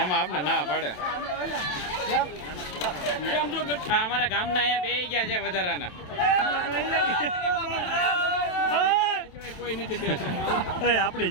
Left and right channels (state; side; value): late; right; 27 ms